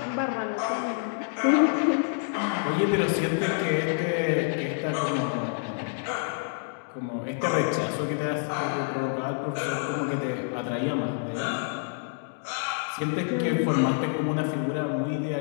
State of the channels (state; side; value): silent; right; 60 dB below the other